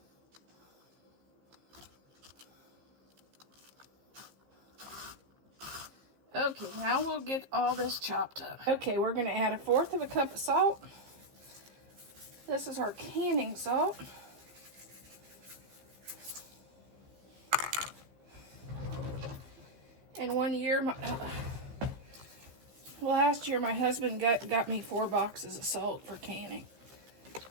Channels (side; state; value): left; late; 15 ms